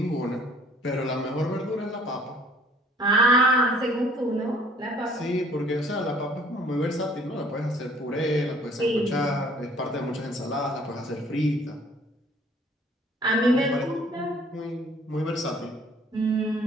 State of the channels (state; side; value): normal; both; correlation 0.55